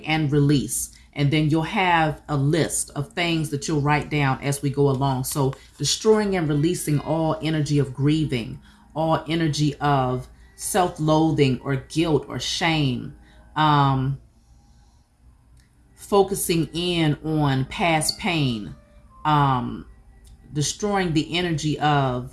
and release. And then you'll have a list of things that you'll write down as we go along. So destroying and releasing all energy of grieving, all energy of self-loathing or guilt or shame, focusing in on past pain, destroying the energy of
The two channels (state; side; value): identical; both; correlation 1.00